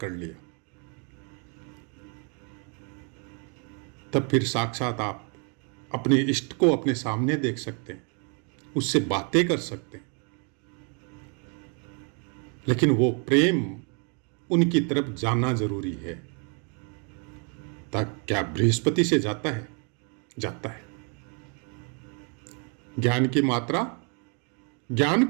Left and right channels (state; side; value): quieter; left; 37.6 dB